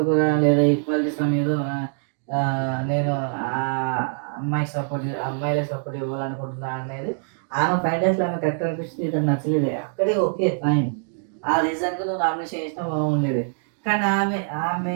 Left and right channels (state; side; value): silent; left; digital silence